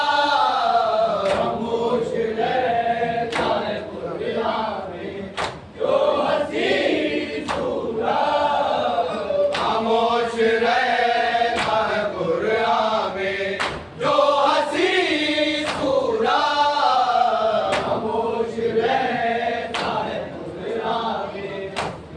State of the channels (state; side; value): identical; both; correlation 1.00